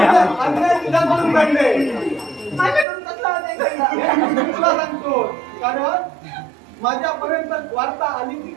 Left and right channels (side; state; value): left; drops out; at 2.9 s